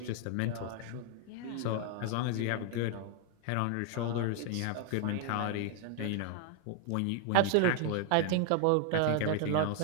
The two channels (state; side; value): different; both; correlation 0.00